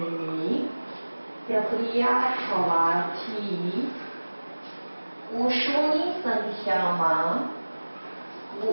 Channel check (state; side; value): inverted; both; correlation -1.00